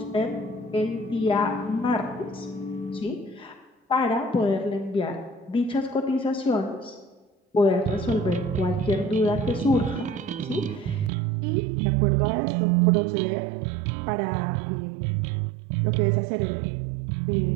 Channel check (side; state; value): left; drops out; at 11.1 s